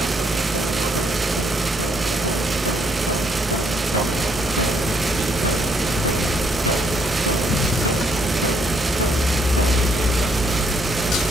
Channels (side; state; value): both; normal; correlation 0.70